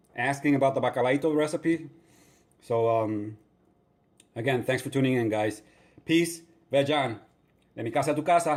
asking about the bacalaito recipe. So, Again, thanks for tuning in, guys. Peace. Vejan. De mi casa a tu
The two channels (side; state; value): both; identical; correlation 1.00